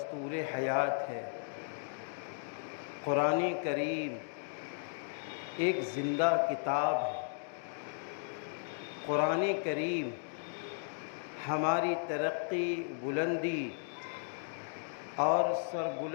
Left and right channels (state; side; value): silent; right; digital silence